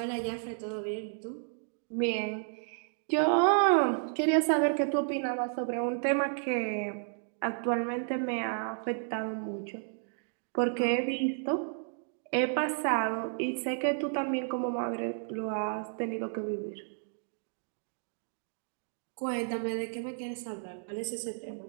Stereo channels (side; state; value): left; silent; digital silence